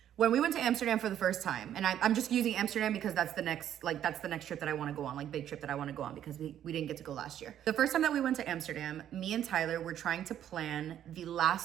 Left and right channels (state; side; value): quieter; left; 10.6 dB